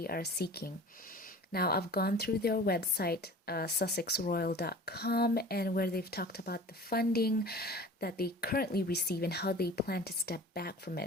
are seeking? Now, I've gone through their website, sussexroyal.com, and where they've talked about the funding that they currently receive and how they plan to step back from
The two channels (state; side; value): normal; both; correlation 0.41